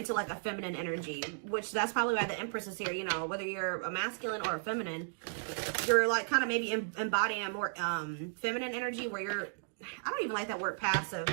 like a feminine energy, which that's probably why the Empress is here. You know, whether you're a masculine or a feminine, you're like kind of maybe embodying a more feminine energy where you're, I don't even like that word passive,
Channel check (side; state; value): left; silent; digital silence